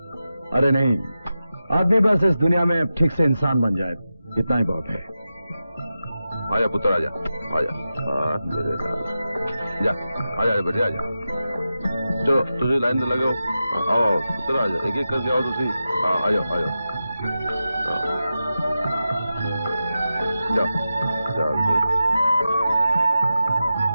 अरे नहीं, आदमी बस इस दुनिया में ठीक से इंसान बन जाए, इतना ही बहुत है। आजा पुत्र आजा, आजा मेरे साथ जा, आजा बेटे आजा। चलो तुझे लाइन में लगे हो, आओ पुत्र आजा, एक एक करके आओ तुसी। आ जाओ आ जाओ, जाओ जाओ।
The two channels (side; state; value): both; inverted; correlation -0.92